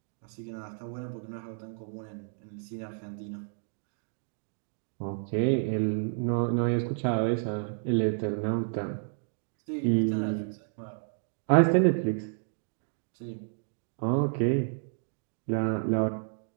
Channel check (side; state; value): left; silent; digital silence